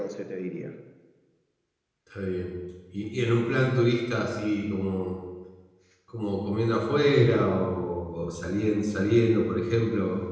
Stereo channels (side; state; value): both; identical; correlation 1.00